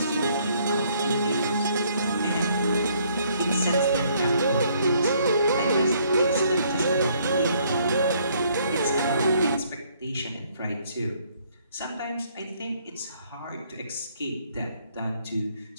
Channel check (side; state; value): both; inverted; correlation -0.66